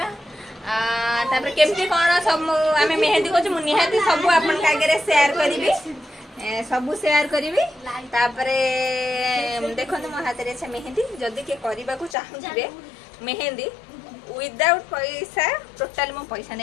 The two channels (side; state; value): right; drops out; at 12.2 s